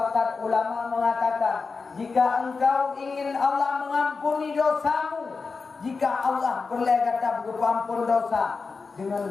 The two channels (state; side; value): quieter; right; 4.6 dB